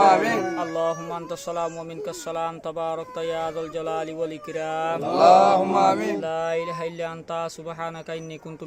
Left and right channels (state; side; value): identical; both; correlation 1.00